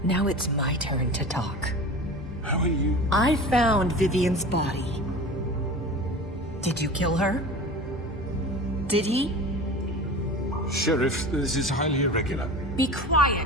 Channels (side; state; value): both; normal; correlation 0.35